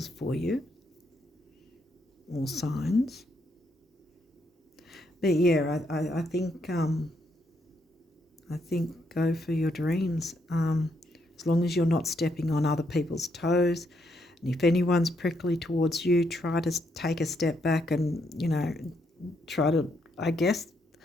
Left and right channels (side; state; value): both; normal; correlation 0.76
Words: for you, or signs. But yeah, I think go for your dreams. As long as you're not stepping on other people's toes, and if anyone's prickly towards you, try to take a step back and, you know, try to, I guess,